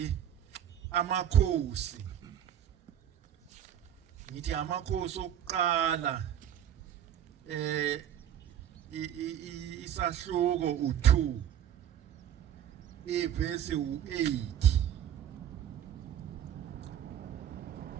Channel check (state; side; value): quieter; left; 10.1 dB